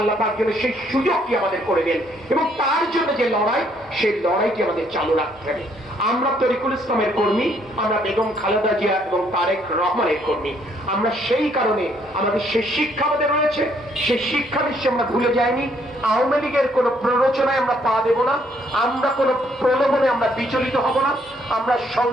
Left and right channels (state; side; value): normal; both; correlation 0.68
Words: পাক যেন সেই সুযোগটি আমাদের করে দেন এবং তার জন্য যে লড়াই, সেই লড়াইটি আমাদের চালু রাখতে হবে। আমরা তরিকুল ইসলামের কর্মী, আমরা বেগম খালেদা জিয়া এবং তারেক রহমানের কর্মী। আমরা সেই কারণে আমাদের সেই শিক্ষা আমাদের রয়েছে, সেই শিক্ষা নিশ্চয় আমরা ভুলে যাইনি। আওয়ামী লীগের কোন প্ররোচনায় আমরা পা দেব না, আমরা কোন প্রলোভনে আমরা বিচলিত হব না। আমরা